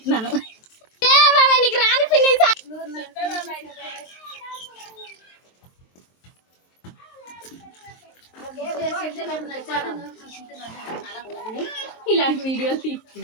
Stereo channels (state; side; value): late; right; 23 ms